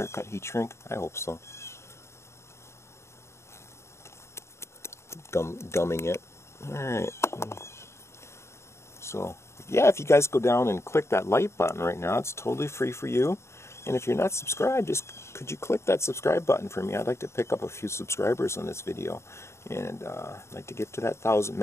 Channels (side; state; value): right; late; 0.13 ms